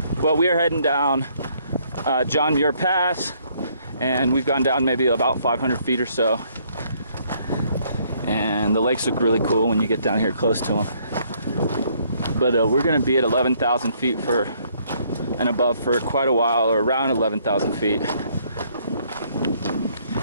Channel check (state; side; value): inverted; both; correlation -0.66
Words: Well, we are heading down John Muir Pass, and we've gone down maybe about 500 feet or so. And the lakes look really cool when you get down here close to them. But we're gonna be at 11,000 feet and above for quite a while, or around 11,000 feet.